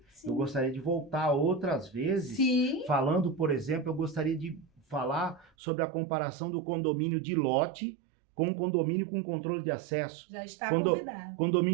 Sim. Eu gostaria de voltar outras vezes, Sim. falando, por exemplo, eu gostaria de falar sobre a comparação do condomínio de lote com o condomínio com controle de acesso. Já está convidado.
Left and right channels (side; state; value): left; drops out; at 5.5 s